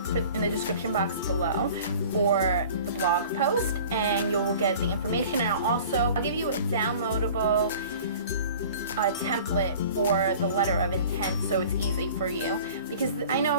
in the description box below for the blog post and you'll get the information. And I'll give you a downloadable template for the letter of intent so it's easy for you, because I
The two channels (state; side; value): inverted; both; correlation -0.44